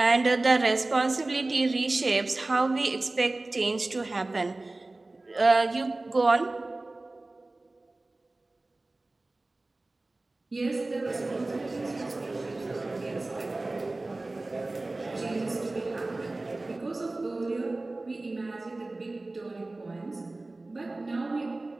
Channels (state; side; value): quieter; left; 3.0 dB